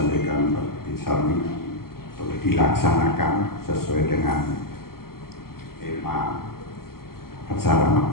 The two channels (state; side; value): late; right; 0.93 ms